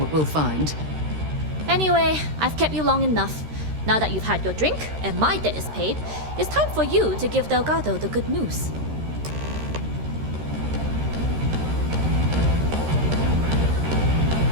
we'll find. Anyway, I've kept you long enough. Now that you've had your drink and my debt is paid, it's time for you to give Delgado the good news.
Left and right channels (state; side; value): late; left; 13 ms